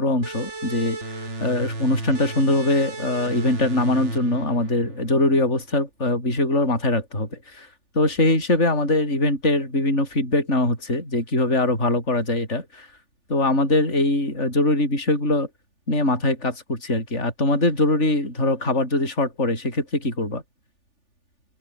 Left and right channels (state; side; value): late; right; 3.4 ms